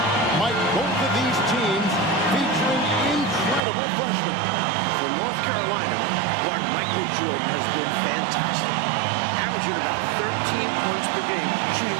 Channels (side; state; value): left; drops out; at 3.6 s